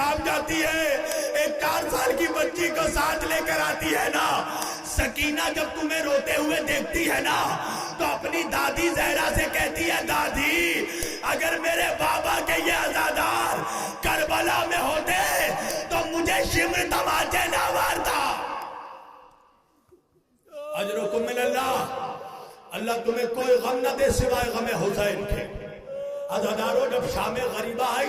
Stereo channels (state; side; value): identical; both; correlation 1.00